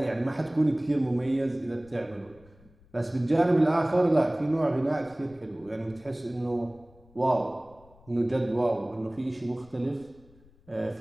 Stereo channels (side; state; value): left; noise; rumble, 27 dB below the sound